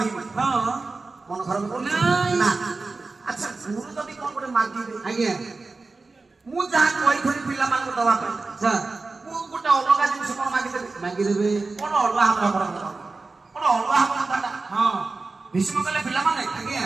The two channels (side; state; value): left; quieter; 3.8 dB